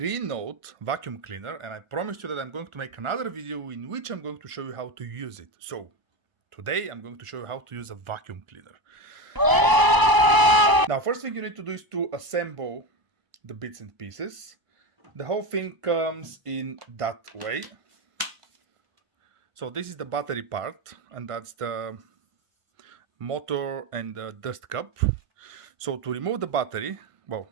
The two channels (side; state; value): left; late; 1.0 ms